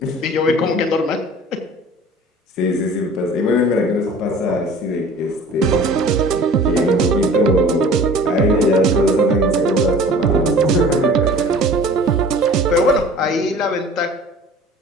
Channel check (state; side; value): normal; both; correlation 0.45